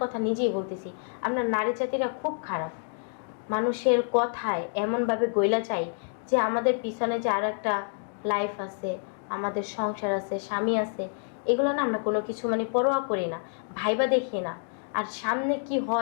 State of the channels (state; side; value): silent; right; digital silence